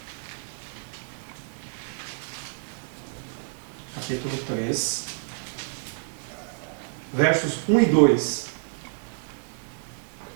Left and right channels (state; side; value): silent; left; digital silence